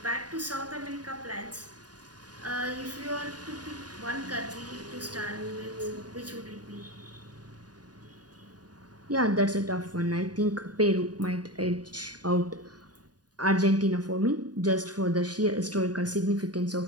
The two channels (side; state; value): left; late; 0.69 ms